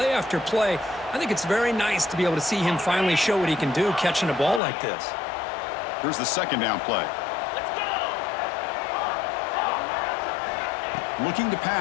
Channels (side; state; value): right; drops out; at 4.6 s